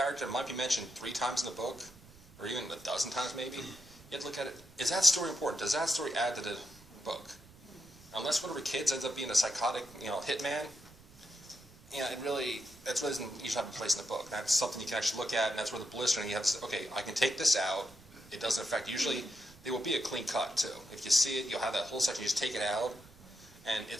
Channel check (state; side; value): noise; right; rumble, 23 dB below the sound